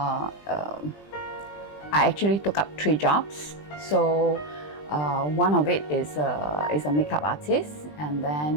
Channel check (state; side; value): late; right; 20 ms